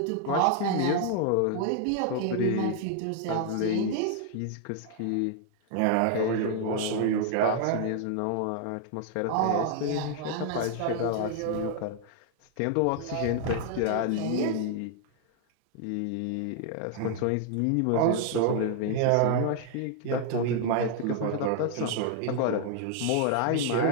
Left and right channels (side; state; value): both; different; correlation 0.00